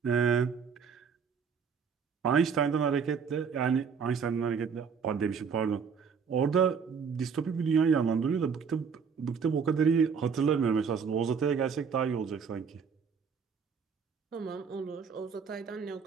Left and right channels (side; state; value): left; quieter; 6.2 dB